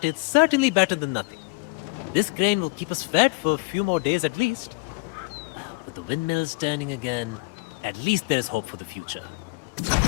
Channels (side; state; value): right; quieter; 27.7 dB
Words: it's certainly better than nothing. This grain will keep us fed for a few more days at least. With the windmills turning again, at least there's hope for the future.